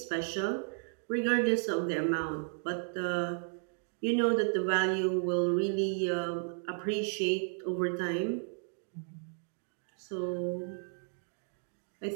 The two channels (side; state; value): left; silent; 55 dB below the other